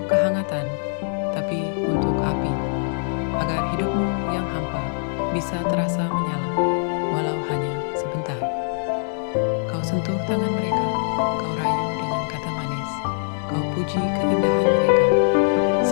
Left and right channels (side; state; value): right; silent; digital silence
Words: kehangatan, tapi untuk api. Agar hidupmu yang hampa bisa terasa menyala, walau hanya sebentar. Kau sentuh tangan mereka, kau rayu dengan kata manis, kau puji keindahan mereka.